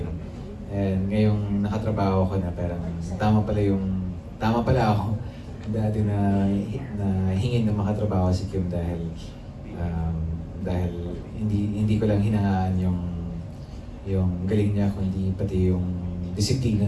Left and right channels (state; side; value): identical; both; correlation 1.00